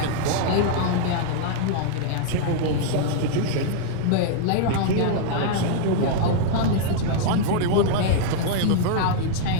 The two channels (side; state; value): both; different; correlation -0.01